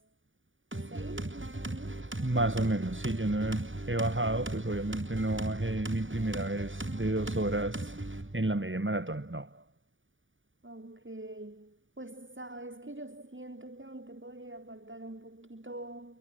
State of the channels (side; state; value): left; late; 0.57 ms